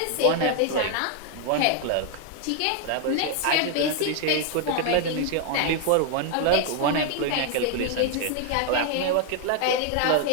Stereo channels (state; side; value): different; both; correlation 0.00